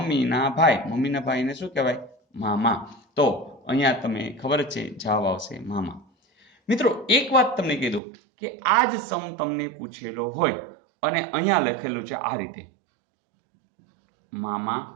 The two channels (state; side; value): drops out; left; at 8.0 s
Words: ભાઈ. મમ્મીના ભાઈને શું કહેવાય? મામા. તો અહીંયા તમે ખબર જ છે જવાબ આવશે મામા. મિત્રો એક વાત તમને કહી દઉં કે આ જ સમ તમને પૂછેલો હોય અને અહીંયા લખેલું છે આ રીતે: મામા,